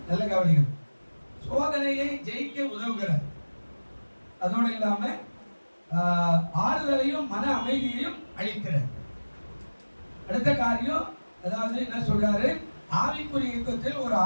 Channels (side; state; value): both; inverted; correlation -1.00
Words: நல்ல கவனிங்க. சோதனையை ஜெயிக்க உதவுகிறார். அதோடு இல்லாம ஆறுதலையும் மன அமைதியையும் அளிக்கிறார். அடுத்த காரியம், அதாவது என்ன சொல்றாரு? ஆவிக்குரிய யுத்தத்தில் ஒரு